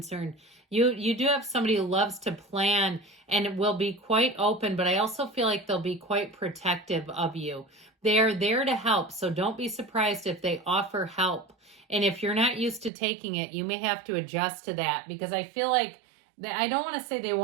you do have somebody who loves to plan and will be quite open, but I also feel like they'll be quite protective of you. They are there to help, so don't be surprised if they offer help. And if you're not used to taking it, you may have to adjust to that, because I feel like, I don't want to say they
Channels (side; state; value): left; drops out; at 12.9 s